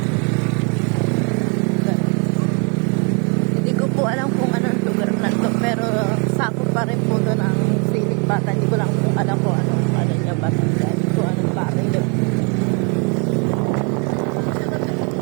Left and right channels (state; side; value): quieter; left; 35.8 dB